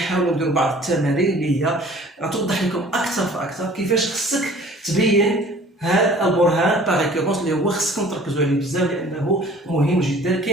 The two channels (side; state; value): both; normal; correlation 0.49